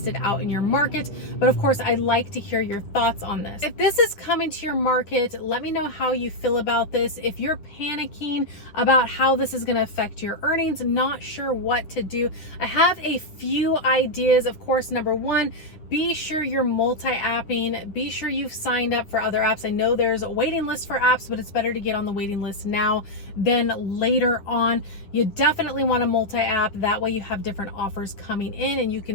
it out in your market. But of course, I'd like to hear your thoughts on this. If this is coming to your market, let me know how you feel about this. If you're panicking about how this is going to affect your earnings, not sure what to do, I have a few ideas. Of course, number one, be sure you're multi-apping. Be sure you've signed up for other apps. I know there's a waiting list for apps, but it's better to get on the waiting list now than later on. You definitely want to multi-app. That way you have different offers coming in and you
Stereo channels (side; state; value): right; late; 10 ms